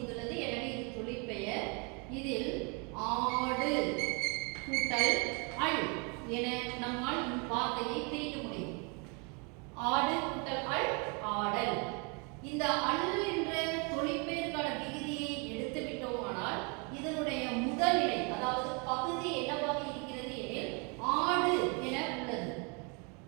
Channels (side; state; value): left; quieter; 33.4 dB